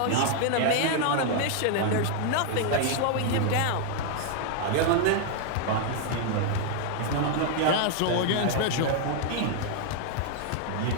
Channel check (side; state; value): both; different; correlation 0.00